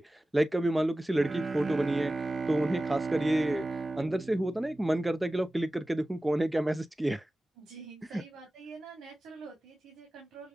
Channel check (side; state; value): both; normal; correlation 0.96